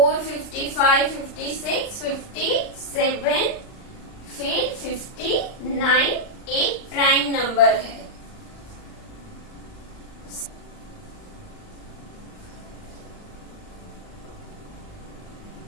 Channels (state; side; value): late; right; 39 ms